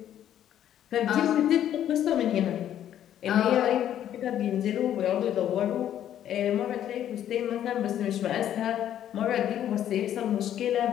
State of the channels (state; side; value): quieter; right; 10.9 dB